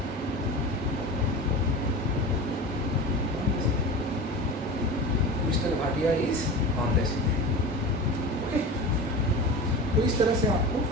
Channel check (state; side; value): normal; both; correlation 0.30